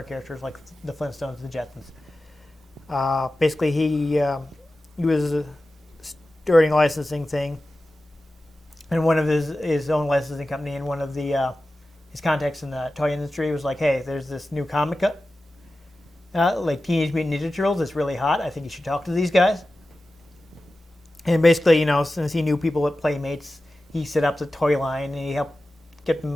characters like the Flintstones, the Jetsons. Basically, he was starting a licensing thing, and one of his own licensing company and one of the his contacts in the toy industry was like, "Hey, there's this new comic like Teenage Mutant Ninja Turtles. It's really hot. I think you should talk to these guys." And basically, since he knew people at Playmates, he set up the toy line and he helped get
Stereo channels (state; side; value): normal; both; correlation 0.94